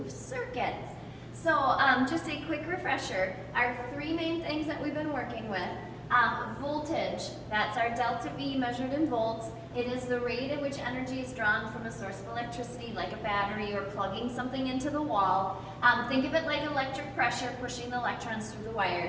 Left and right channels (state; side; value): identical; both; correlation 1.00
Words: circuits. So just a quick refresher, our three main things that we've been working with. Voltage, that's our delta V measured in volts. It is the rate at which energy is drawn from a source of electricity like a battery or plugging something into the wall. Think of it like electric pressure pushing the electrons through the